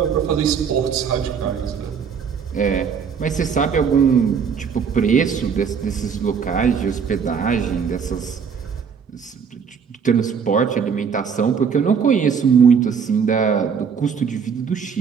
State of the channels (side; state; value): left; quieter; 6.6 dB